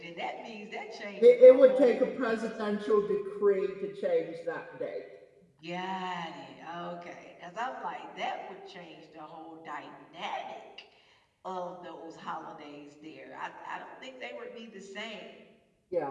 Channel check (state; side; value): identical; both; correlation 1.00